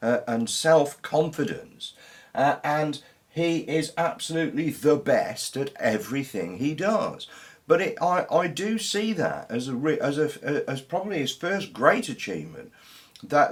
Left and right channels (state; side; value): identical; both; correlation 1.00